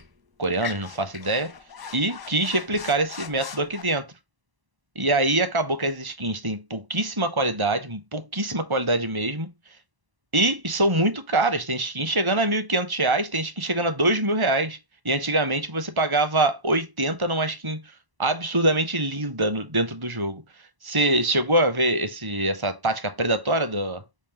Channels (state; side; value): late; left; 1.0 ms